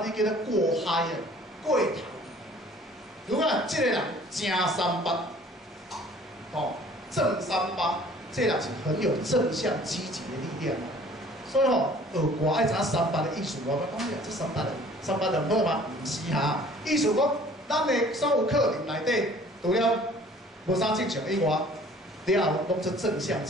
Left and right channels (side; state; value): both; normal; correlation 0.52